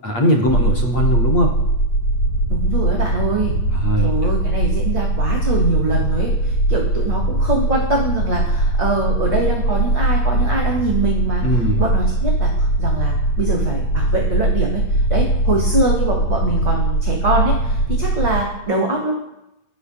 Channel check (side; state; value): right; late; 8.5 ms